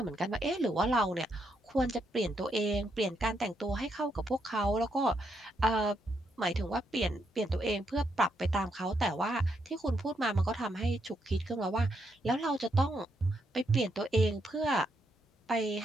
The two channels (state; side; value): normal; both; correlation 0.78